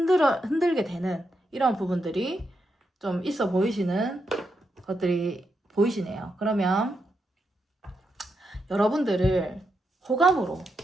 되는 이런 부분들이 좀 있어 보이시는 것들이 보이시네요. 그러면 여러분들을 호감으로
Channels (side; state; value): both; normal; correlation 0.83